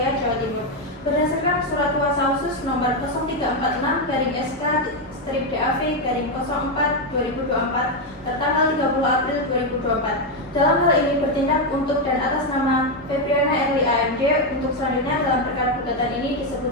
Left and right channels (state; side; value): normal; both; correlation 0.05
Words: Jawa Timur. Berdasarkan surat kuasa khusus nomor 0346/SK/DAV/04/2024 tertanggal 30 April 2024. Dalam hal ini bertindak untuk dan atas nama Febriana Erli AMD untuk selanjutnya dalam perkara gugatan ini